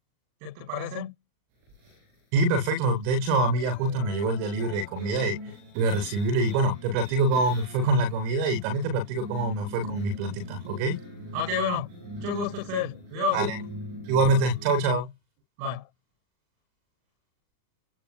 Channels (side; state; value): left; late; 39 ms